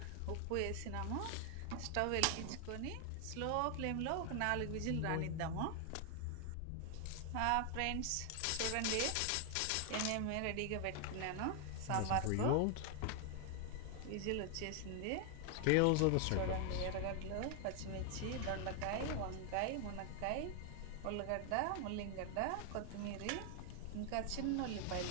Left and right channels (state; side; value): different; both; correlation 0.00